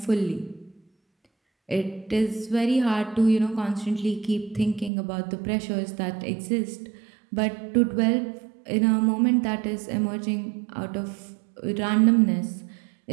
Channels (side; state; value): left; drops out; at 4.9 s